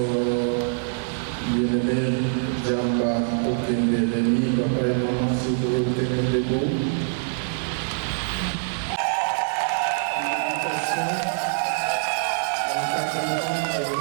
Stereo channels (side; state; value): left; silent; digital silence